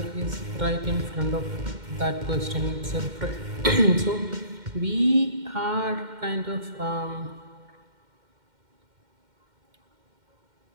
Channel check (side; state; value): left; late; 2.1 ms